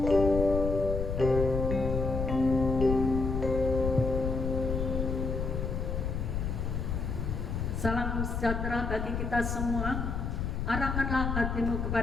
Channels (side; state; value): left; noise; rumble, 2 dB below the sound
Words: Salam sejahtera bagi kita semua. Arahkanlah hatimu